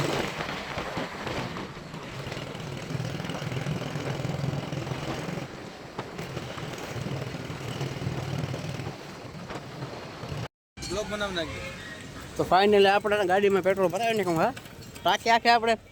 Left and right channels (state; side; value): identical; both; correlation 1.00